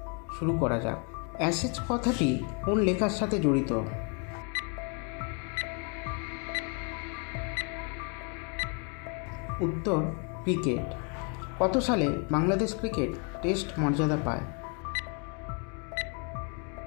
শুরু করা যাক। অ্যাশেজ কথাটি কোন লেখার সাথে জড়িত? উত্তর ক্রিকেট। কত সালে বাংলাদেশ ক্রিকেট টেস্ট মর্যাদা পায়?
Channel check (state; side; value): quieter; right; 37.1 dB